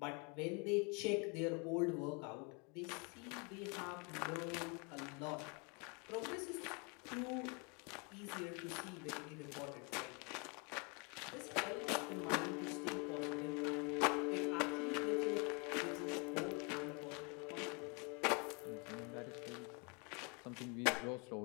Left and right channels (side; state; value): right; quieter; 32.7 dB